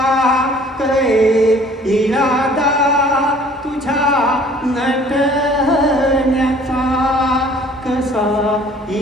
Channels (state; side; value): normal; both; correlation 0.53